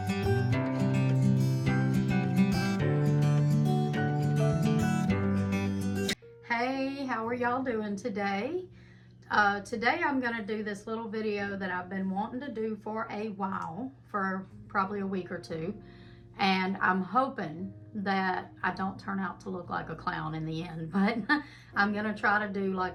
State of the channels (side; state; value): both; identical; correlation 1.00